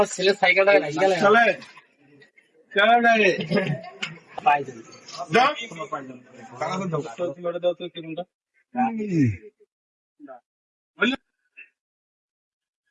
ছেলে সাইকেলটা রাখি গেলে চলে চলে যায় পাই যাবে দাও টাকা দাও তো কিলোটা দাও তো কিলোটা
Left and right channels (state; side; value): identical; both; correlation 1.00